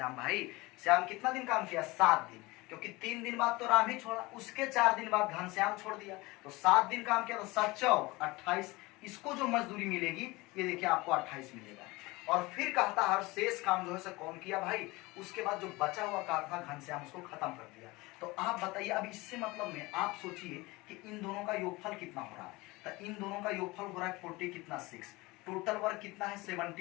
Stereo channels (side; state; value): right; quieter; 22.3 dB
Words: भाई। श्याम कितना दिन काम किया, 7 दिन, क्योंकि 3 दिन बाद तो राम ही छोड़ा। उसके 4 दिन बाद घनश्याम छोड़ दिया, तो 7 दिन काम किया, तो 7 चौक 28। इसको जो मजदूरी मिलेगी ये देखिए आपको 28 मिलेगा। और फिर कहता है शेष काम जो है कौन किया भाई, उसके बाद जो बचा हुआ काम था घनश्याम उसको खत्म कर दिया। तो आप बताइए, अब इससे मतलब में आप सोचिए कि इन दोनों का योगफल कितना हो रहा है, तो इन दोनों का योगफल हो रहा है 40 कितना 6। टोटल वर्क कितना है